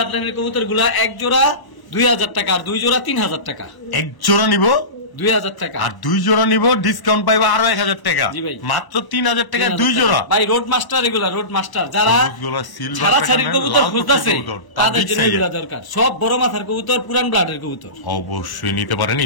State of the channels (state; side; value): late; right; 1.0 ms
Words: লাইনের কবুতর গুলা এক জোড়া 2000 টাকা, আর 2 জোড়া 3000 টাকা। এক জোড়া নিব 2000 টাকা, আর 2 জোড়া নিব ডিসকাউন্ট পাইবো আরো 1000 টাকা, মাত্র 3000 টাকা 2 জোড়া ভাই। রোড মাস্টার এগুলা, রোড মাস্টার যারা সিলভার ছাড়া ছাড়ির কবুতর খুঁজতেছে তাদের জন্য এগুলা দরকার, সব বড় মাথার কবুতর, পুরান ব্লাডের কবুতর অবশ্যই নিতে পারেন।